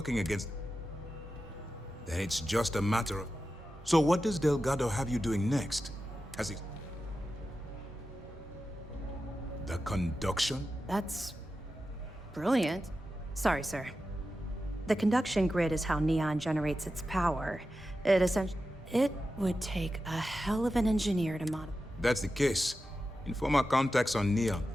against... Then it's just a matter of... So what does Delgado have you doing next? Has he... The conduction? That's... brilliant. Sorry, sir. The conduction grid is how Neon generates its power. It would take a hell of an engineer to modify. That's the case. Inform our contacts on Neon.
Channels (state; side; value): normal; both; correlation 0.92